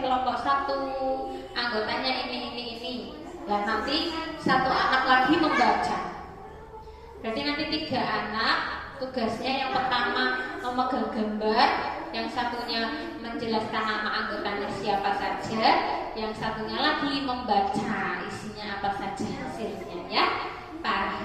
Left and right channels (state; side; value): identical; both; correlation 1.00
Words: kelompok 1, anggotanya ini. Dan nanti satu anak lagi membaca. Berarti nanti 3 anak, tugasnya yang pertama memegang gambar, yang satunya menjelaskan nama anggotanya siapa saja, yang satunya lagi membaca isinya apa saja hasilnya, ya.